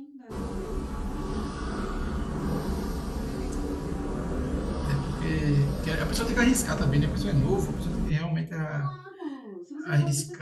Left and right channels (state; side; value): identical; both; correlation 1.00